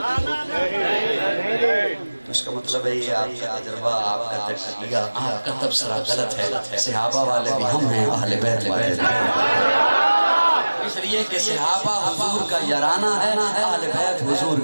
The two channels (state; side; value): inverted; both; correlation -1.00